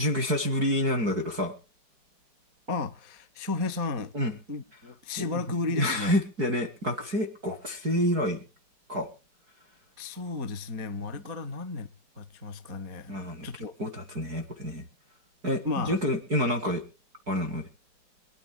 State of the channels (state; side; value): late; left; 4.7 ms